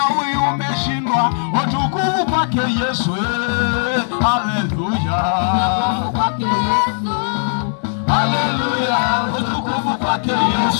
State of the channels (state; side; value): silent; right; 64 dB below the other